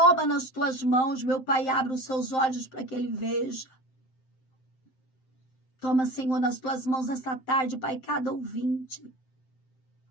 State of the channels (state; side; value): late; right; 7.7 ms